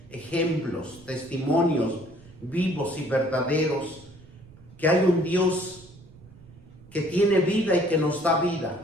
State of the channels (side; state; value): right; noise; rumble, 22 dB below the sound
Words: ejemplos, testimonios vivos y verdaderos, que hay un Dios que tiene vida y que nos da